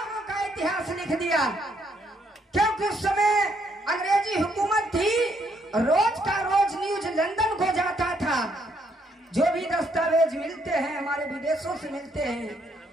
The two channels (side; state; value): both; normal; correlation 0.71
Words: उनका इतिहास लिख दिया। क्योंकि उस समय अंग्रेजी हुकूमत थी, रोज का रोज न्यूज लंदन को जाता था। जो भी दस्तावेज मिलते हैं हमारे विदेशों से मिलते हैं।